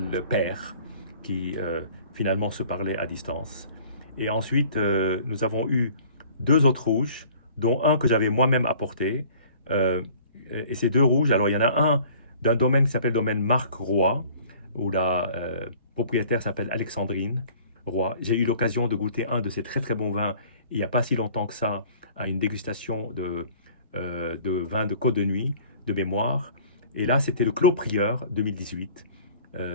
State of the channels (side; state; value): both; inverted; correlation -0.50